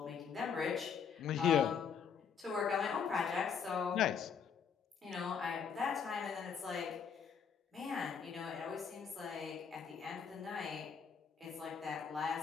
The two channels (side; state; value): right; quieter; 6.7 dB